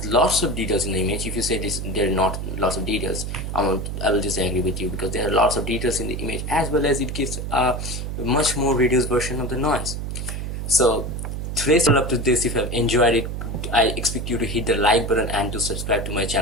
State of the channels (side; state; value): right; noise; hum, 4 dB below the sound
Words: lots of details in the image. If you say this there are not lots of details, I will disagree with you, because there are lots of details in the image, as well as it gives a much more reduced version of the noise. So today's all up to this. If you have enjoyed it, I expect you to hit the like button and to subscribe to my